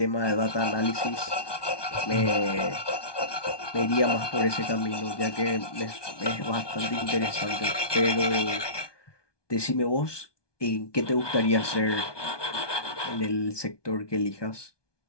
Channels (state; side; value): late; right; 1.2 ms